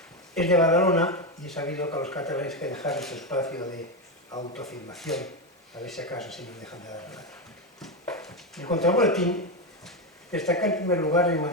es de Badalona, y he sabido que a los catalanes hay que dejar ese espacio de autoafirmación, a ver si acaso si nos dejan de dar nada. En cuanto al boletín, destaca en primer lugar el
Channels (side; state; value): both; normal; correlation 0.11